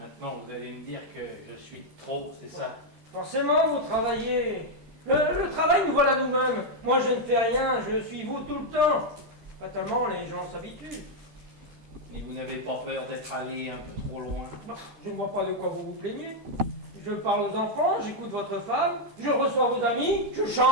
vous allez me dire que je suis trop, c'est ça? Forcément, vous travaillez. Le travail, nous voilà nous-mêmes. Moi, je ne fais rien, je suis vous tout le temps. Fatalement, les gens s'habituent. Et vous n'avez pas peur d'être allé un peu trop loin? Je ne vois pas de quoi vous vous plaignez. Je parle aux enfants, j'écoute votre femme, je reçois vos amis, je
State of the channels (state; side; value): late; left; 13 ms